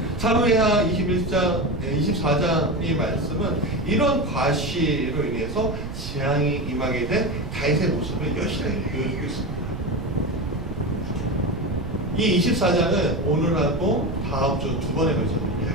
사무엘하 24장의 말씀은 이런 과시로 인해서 재앙이 임하게 된 다윗의 모습을 여실하게 보여주고 있습니다. 이 24장은 오늘하고 다음 주 두 번에 걸쳐서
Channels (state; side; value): noise; right; rumble, 8 dB below the sound